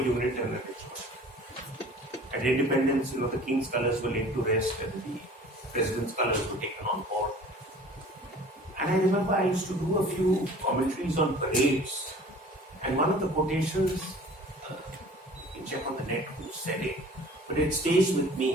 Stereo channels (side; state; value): both; normal; correlation 0.46